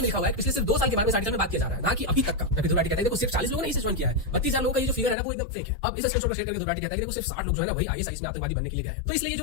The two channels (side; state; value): right; drops out; at 5.2 s